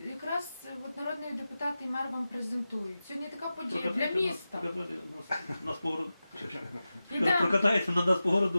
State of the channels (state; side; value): inverted; both; correlation -0.94